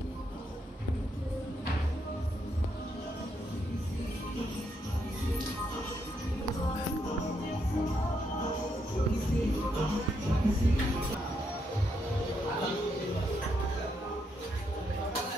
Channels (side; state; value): both; normal; correlation 0.78